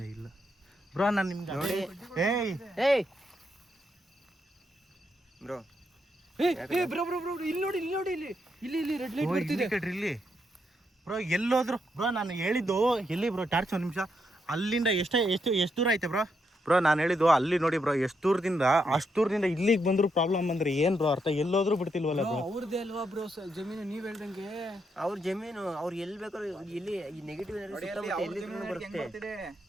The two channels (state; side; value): normal; both; correlation 0.80